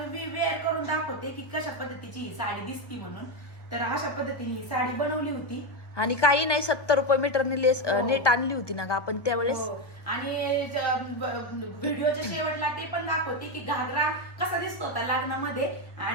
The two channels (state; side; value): late; right; 1.2 ms